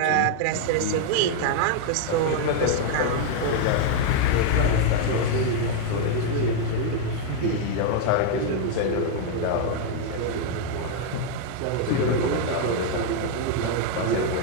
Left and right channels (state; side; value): different; both; correlation 0.00